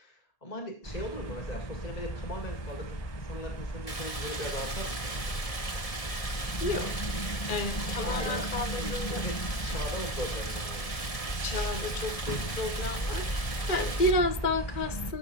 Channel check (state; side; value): late; right; 1.7 ms